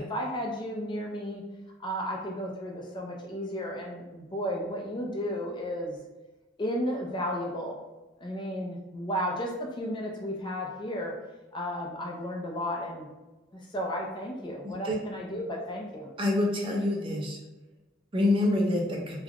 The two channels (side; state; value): both; normal; correlation 0.55